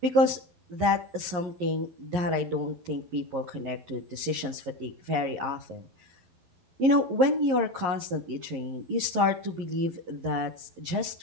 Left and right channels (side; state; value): left; late; 11 ms